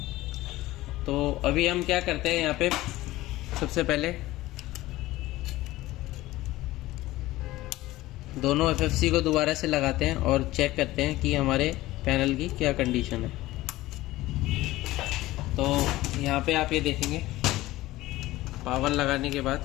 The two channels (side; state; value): right; quieter; 17.5 dB